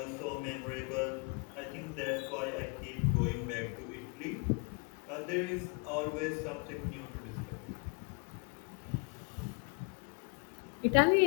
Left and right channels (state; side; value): quieter; right; 33.8 dB